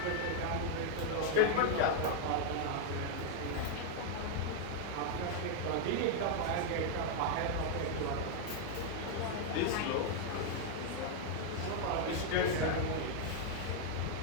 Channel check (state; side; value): different; both; correlation 0.00